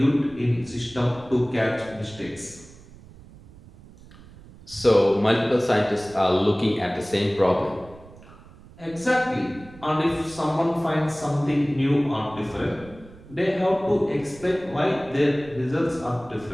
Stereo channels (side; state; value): right; noise; rumble, 21 dB below the sound